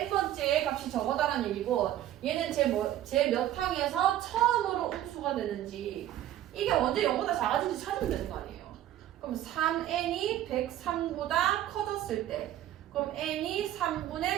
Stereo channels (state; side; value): quieter; left; 12.7 dB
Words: 값이 저거다라는 얘기고, 얘는 제 몇 항에서 처음으로 음수가 되는지, 이게 언제 0보다 작아진지 찾으면 되는 거 아니에요. 그럼 3n이 103보다 커졌을 때, 그럼 n이